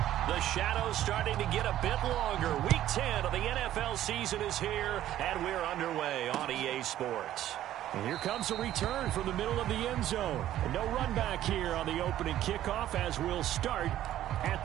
The shadows starting to get a bit longer. Week 10 of the NFL season is here, and we're underway on EA Sports. And here comes a return from the middle of the end zone. And no run back here on the opening kickoff as we'll start at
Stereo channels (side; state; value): left; quieter; 12.7 dB